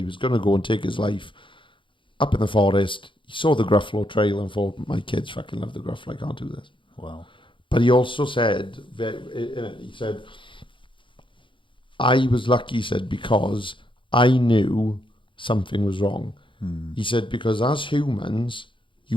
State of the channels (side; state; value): right; late; 0.24 ms